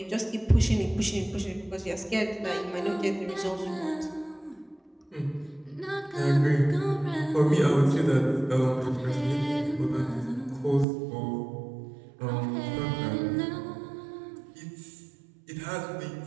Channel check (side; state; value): left; drops out; at 10.9 s